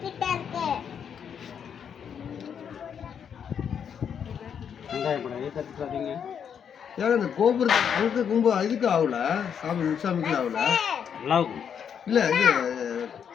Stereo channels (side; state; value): right; quieter; 7.8 dB